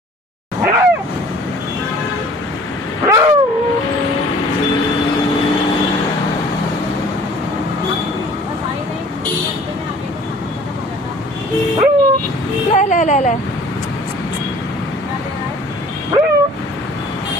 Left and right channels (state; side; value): normal; both; correlation 0.50